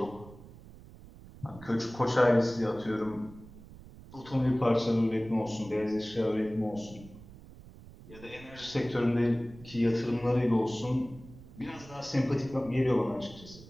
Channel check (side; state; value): right; noise; rumble, 19 dB below the sound